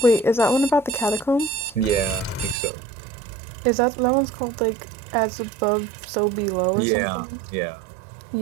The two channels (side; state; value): left; drops out; at 2.6 s